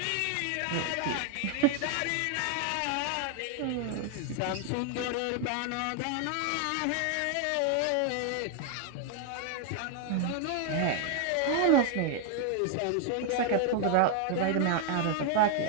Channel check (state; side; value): different; both; correlation 0.00